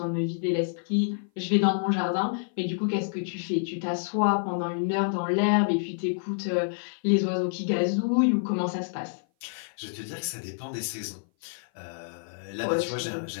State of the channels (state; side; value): silent; right; 56 dB below the other